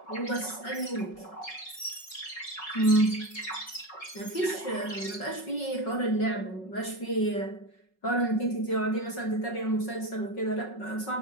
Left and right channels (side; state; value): right; late; 5.4 ms